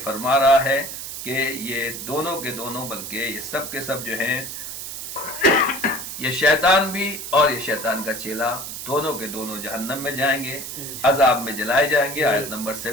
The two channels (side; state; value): right; noise; hiss, 8 dB below the sound